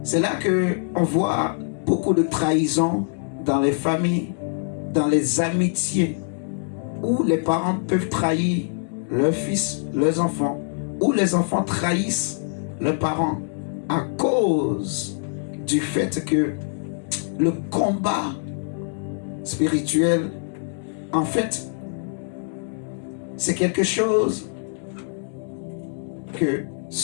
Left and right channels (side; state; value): right; silent; digital silence